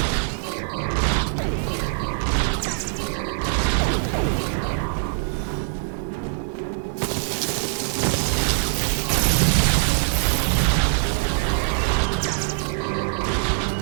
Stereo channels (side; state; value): left; silent; 63 dB below the other